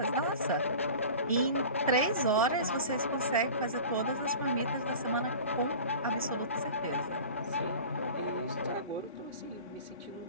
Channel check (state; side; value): inverted; both; correlation -0.38